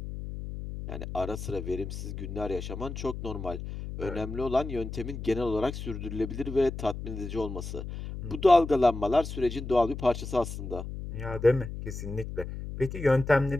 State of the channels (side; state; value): left; noise; hum, 7 dB below the sound